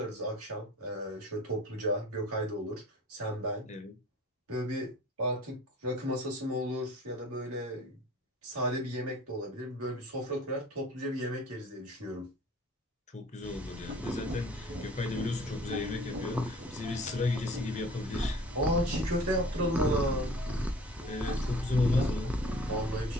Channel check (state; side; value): normal; both; correlation 0.47